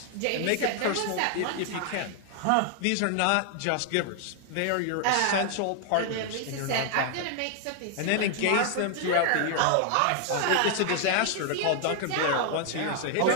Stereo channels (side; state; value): both; different; correlation 0.00